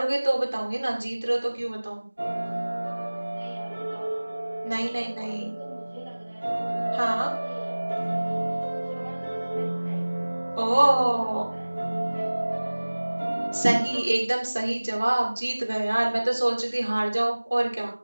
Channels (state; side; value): inverted; both; correlation -1.00